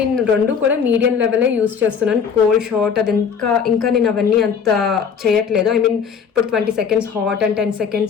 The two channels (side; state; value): right; quieter; 6.7 dB